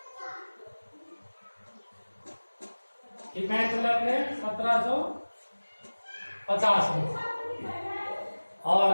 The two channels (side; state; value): both; inverted; correlation -1.00